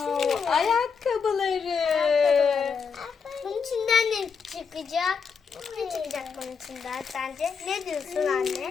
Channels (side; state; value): right; quieter; 5.9 dB